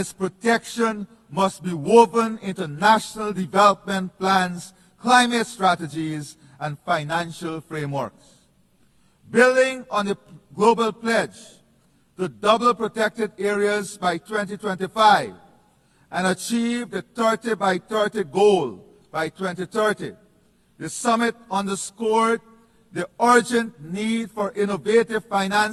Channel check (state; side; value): identical; both; correlation 1.00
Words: protection must be woven into national development plans, climate strategies, and financial frameworks. Building on the global pledge to double protected areas by 2025 and achieve the 30 by 30 goal by 2030, the summit underscored the urgent need for innovative